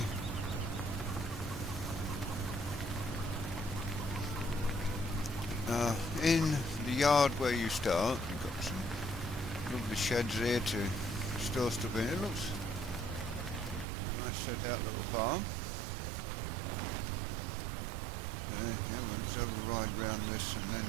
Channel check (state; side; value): drops out; left; at 13.9 s